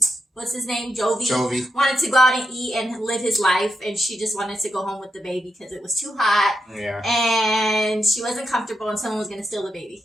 what's his name? Jovi wanted to go out and eat and live his life, and she just wanted to go home with the baby because it was too hot. Yeah. And she wasn't comfortable, and someone was going to steal the baby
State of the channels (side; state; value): both; normal; correlation 0.85